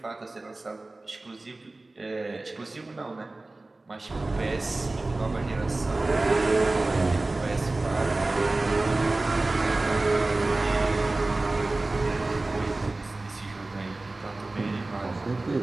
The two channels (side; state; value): left; quieter; 3.0 dB